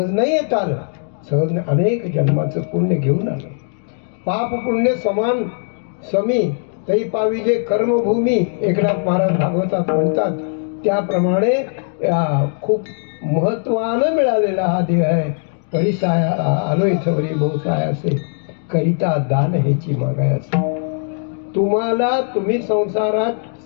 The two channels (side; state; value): right; silent; digital silence